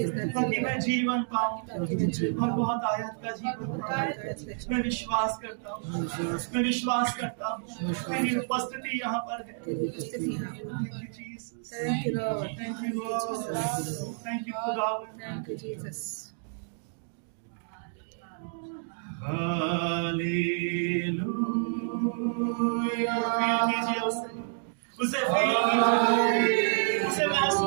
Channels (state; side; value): silent; left; digital silence